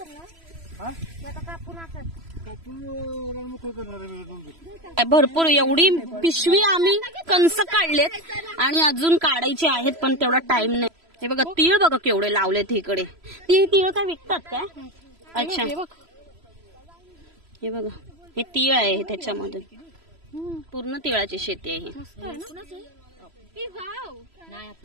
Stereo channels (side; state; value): left; late; 3.0 ms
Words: भरपूर एवढी पिशवी आम्ही कंस काढलेत आणि अजून काढायचे आहेत, पण तेवढा टाइम नाही. हे बघा तीळ बघा केवढे लावलेत इकडे. ती तीळ काय विकतात काय? अच्छा हे बघा हे तीळ आहे त्याच्यामधून पूर्ण तिळाची शेती आहे.